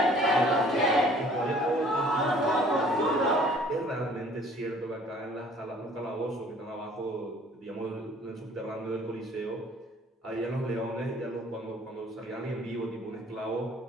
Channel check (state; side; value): normal; both; correlation 0.54